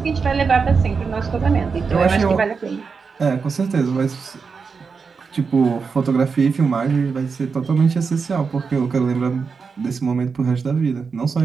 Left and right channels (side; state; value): left; quieter; 5.3 dB